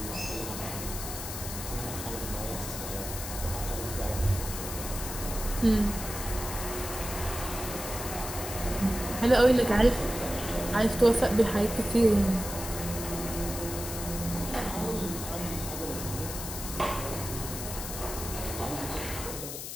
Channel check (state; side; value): noise; left; hiss, 7 dB below the sound